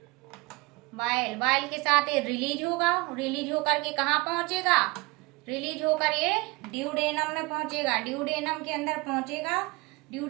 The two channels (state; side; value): quieter; left; 24.2 dB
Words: बाइल, बाइल के साथ ये रिलीज होगा, रिलीज होकर के कहाँ पहुंचेगा, रिलीज होकर ये ड्यूडेनम में पहुंचेगा, ड्यूडेनम के अंदर पहुंचेगा,